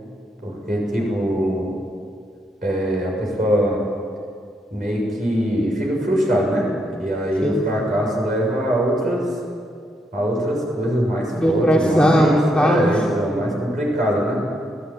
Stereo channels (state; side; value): normal; both; correlation 0.77